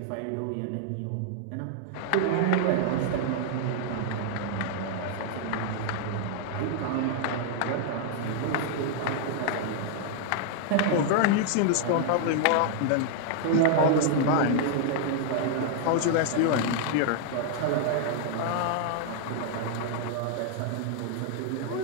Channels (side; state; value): both; different; correlation -0.01